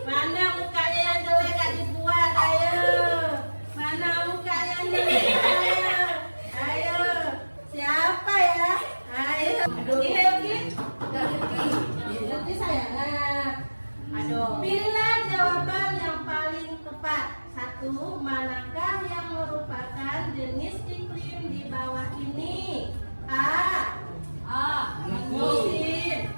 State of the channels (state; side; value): inverted; both; correlation -1.00